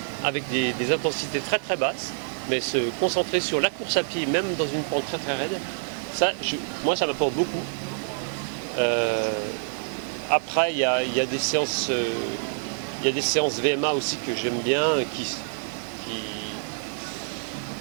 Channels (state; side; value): silent; left; digital silence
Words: avec des intensités très très basses, mais se concentrer sur la course à pied, même dans une pente très très raide, moi ça m'apporte beaucoup. Après il y a des séances VMA aussi que j'aime bien, qui